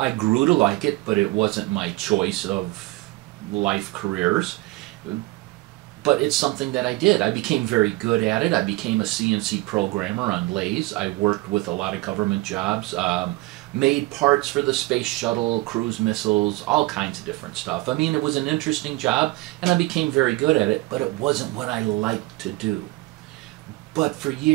grew to like it, but it wasn't my choice of life careers. But it's something that I did. I became very good at it. I became a CNC programmer on lathes. I worked with a lot of government jobs, made parts for the space shuttle, cruise missiles, all kinds of different stuff. I mean, it was an interesting job, and I became very good at it, but it wasn't what I liked to do. But for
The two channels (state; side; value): quieter; left; 20.5 dB